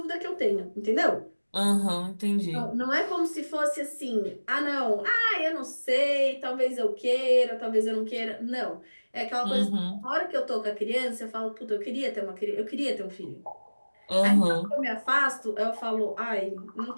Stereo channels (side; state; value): both; inverted; correlation -1.00